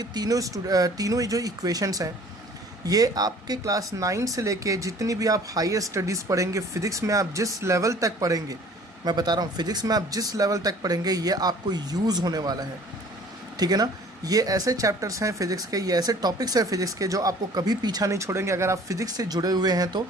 तीनों जो equations हैं ये आपके क्लास 9 से लेके जितनी भी आप हायर स्टडीज़ पढ़ेंगे, फिज़िक्स में आप जिस लेवल तक पढ़ेंगे, मैं बता रहा हूँ फिज़िक्स में आप जिस लेवल तक पढ़ेंगे ये आपको यूज़ होने वाला है। ठीक है ना, ये ऐसे चैप्टर्स हैं फिज़िक्स के, ये ऐसे टॉपिक्स हैं फिज़िक्स के जो आपको कभी पीछा नहीं छोड़ेंगे अगर आप फिज़िक्स से जुड़े हुए हैं तो।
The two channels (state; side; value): normal; both; correlation 0.51